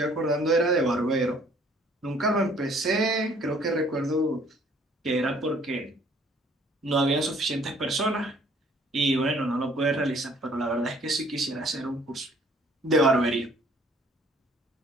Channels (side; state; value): both; normal; correlation 0.58